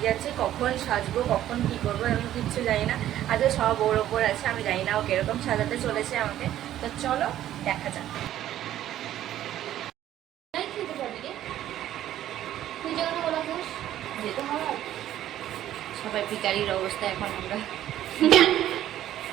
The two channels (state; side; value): quieter; left; 12.5 dB